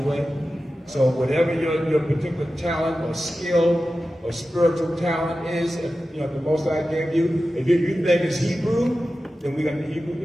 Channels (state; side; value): normal; both; correlation 0.93